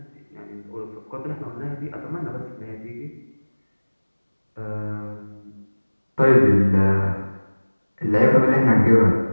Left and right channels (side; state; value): both; inverted; correlation -1.00